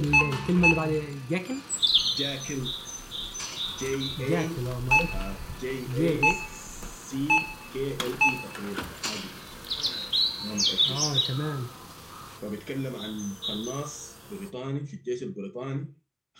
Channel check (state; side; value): identical; both; correlation 1.00